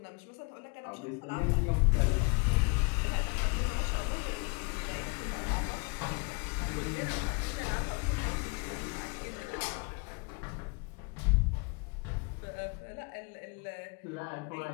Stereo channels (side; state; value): right; quieter; 32.0 dB